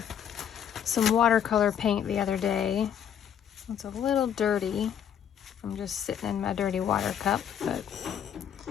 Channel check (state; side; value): quieter; right; 8.8 dB